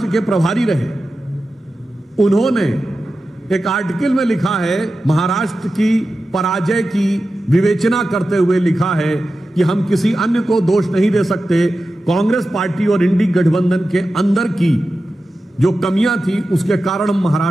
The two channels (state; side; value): normal; both; correlation 0.93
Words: के प्रभारी रहे, उन्होंने एक आर्टिकल में लिखा है, महाराष्ट्र की पराजय की विवेचना करते हुए लिखा है कि हम किसी अन्य को दोष नहीं दे सकते, कांग्रेस पार्टी और इंडी गठबंधन के अंदर की जो कमियां थी उसके कारण हम